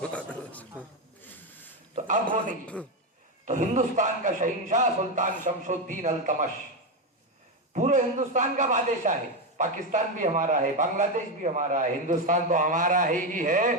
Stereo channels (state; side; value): normal; both; correlation 0.10